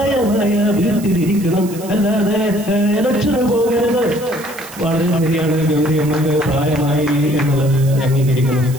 വീട്ടിലിരിക്കണം, അല്ലാതെ ഇലക്ഷന് പോകരുത്. വളരെ ശരിയാണ്. ഗൗരിയമ്മക്ക് പ്രായമായി എന്നുള്ളത് അംഗീകരിക്കുന്നു.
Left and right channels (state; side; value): noise; right; hiss, 17 dB below the sound